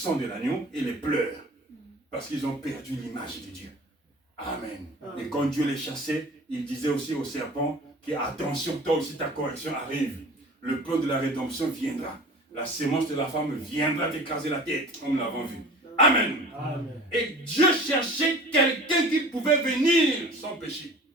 de l'agneau et les pleurs. Parce qu'ils ont perdu l'image de Dieu. Amen. Et quand Dieu les chassait, il disait aussi au serpent que attention, toi aussi ta correction arrive. Le plan de la rédemption viendra. La sémence de la femme viendra t'écraser la tête, comme nous l'avons vu. Amen. Amen. Et Dieu cherchait quelqu'un qui pouvait venir sans péché.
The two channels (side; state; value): both; normal; correlation 0.41